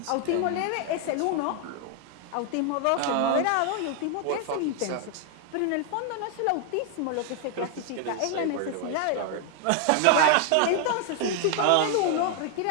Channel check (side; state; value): both; different; correlation 0.00